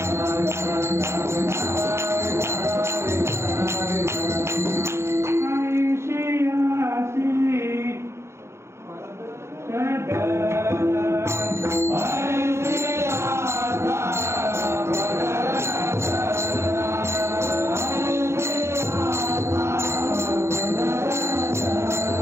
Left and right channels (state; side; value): late; left; 0.13 ms